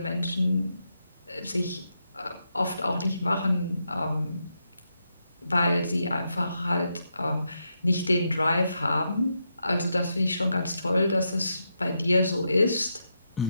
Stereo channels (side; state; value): both; inverted; correlation -0.83